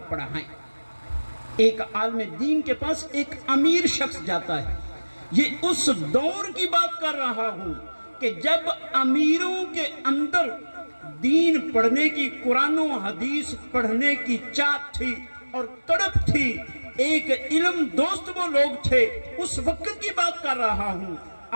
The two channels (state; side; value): inverted; both; correlation -1.00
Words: پڑھائیں. ایک عالم دین کے پاس ایک امیر شخص جاتا ہے. یہ اس دور کی بات کر رہا ہوں کہ جب امیروں کے اندر دین پڑھنے کی، قرآن و حدیث پڑھنے کی چاہت تھی اور تڑپ تھی. ایک علم دوست وہ لوگ تھے. اس وقت کی بات کر رہا ہوں.